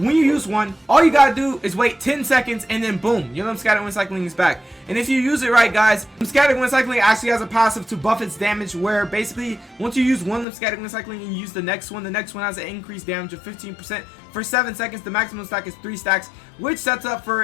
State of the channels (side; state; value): right; drops out; at 10.5 s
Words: you use one, all you gotta do is wait 10 seconds, and then boom, your scatter wind cycling is back. And if you use it right, guys, scatter wind cycling actually has a passive to buff its damage, where basically once you use one scatter wind cycling and you use the next one has an increased damage of 15% for 7 seconds. The maximum stack is 3 stacks, which sets up